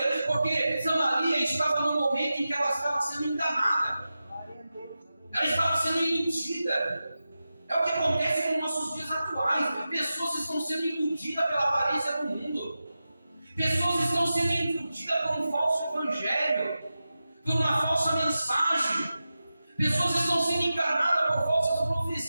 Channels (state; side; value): inverted; both; correlation -0.93